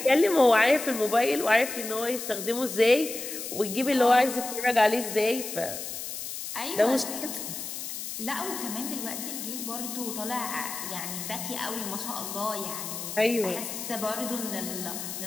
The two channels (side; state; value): left; noise; hiss, 7 dB below the sound